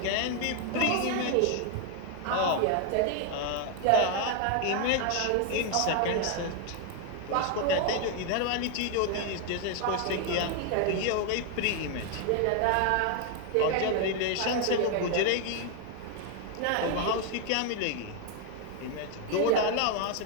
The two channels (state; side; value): different; both; correlation 0.01